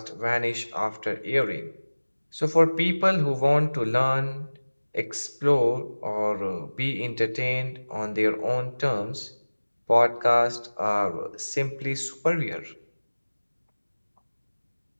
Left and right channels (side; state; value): both; inverted; correlation -1.00